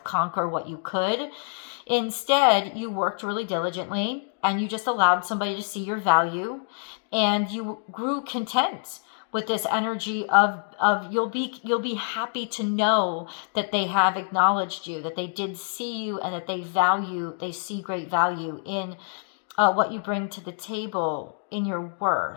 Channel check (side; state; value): right; silent; 61 dB below the other